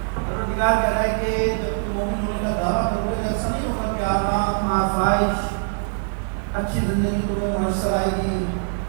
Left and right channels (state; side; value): silent; left; digital silence